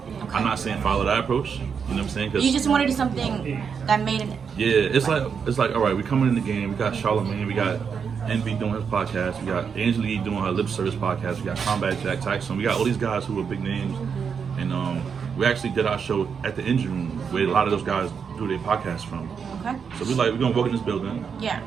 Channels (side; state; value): left; quieter; 6.5 dB